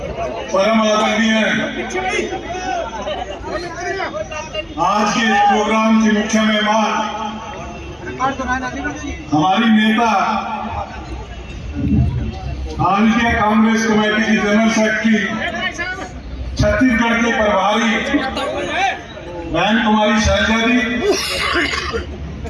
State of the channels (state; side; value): identical; both; correlation 1.00